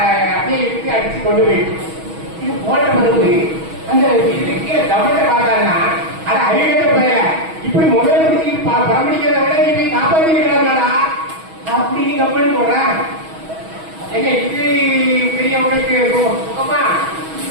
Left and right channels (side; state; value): left; late; 6.2 ms